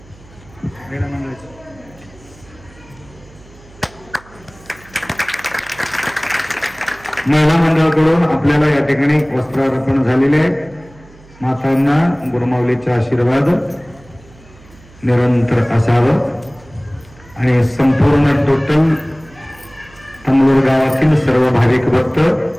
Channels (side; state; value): right; noise; hum, 24 dB below the sound